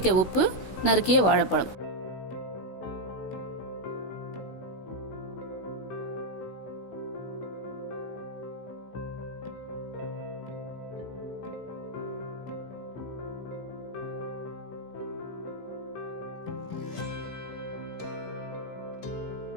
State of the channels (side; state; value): right; late; 16 ms